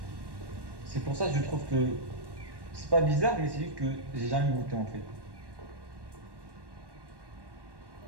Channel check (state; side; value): late; left; 1.1 ms